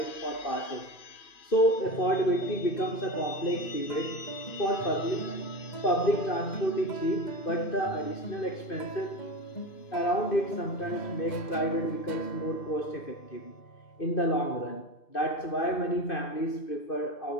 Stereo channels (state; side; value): late; right; 2.6 ms